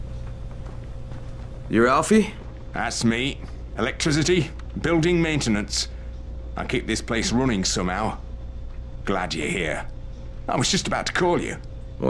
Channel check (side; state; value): both; identical; correlation 1.00